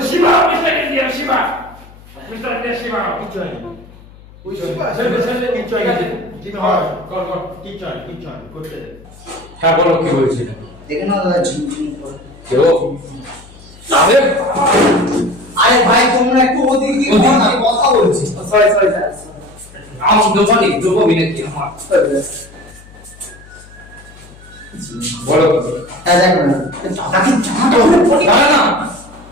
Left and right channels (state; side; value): noise; left; hum, 22 dB below the sound